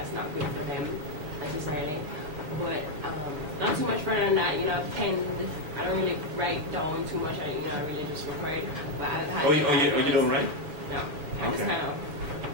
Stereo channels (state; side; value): late; left; 6.8 ms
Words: not good for them necessarily. But not too much further than that, I don't really write down too much, I really just record. But I've had you don't write? No, I just kind of